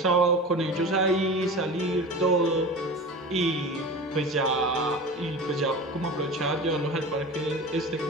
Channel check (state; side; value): normal; both; correlation 0.33